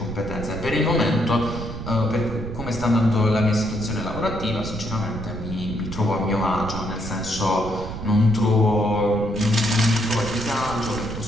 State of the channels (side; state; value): right; noise; rumble, 8 dB below the sound